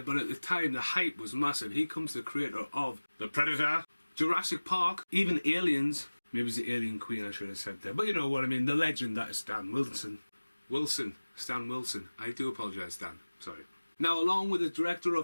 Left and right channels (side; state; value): both; inverted; correlation -1.00